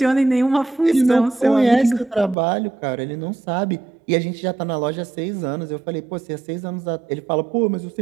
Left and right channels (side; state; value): left; drops out; at 2.4 s